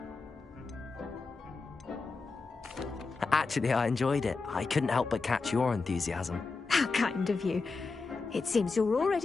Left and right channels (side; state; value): right; quieter; 4.2 dB